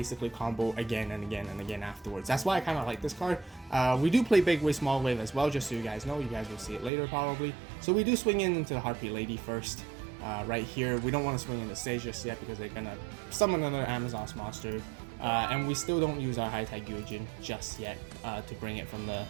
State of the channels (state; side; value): drops out; left; at 6.9 s